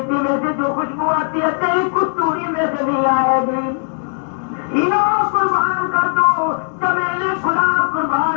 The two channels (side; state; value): right; silent; 57 dB below the other